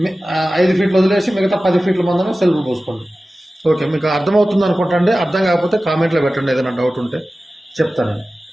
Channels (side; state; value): both; normal; correlation 0.96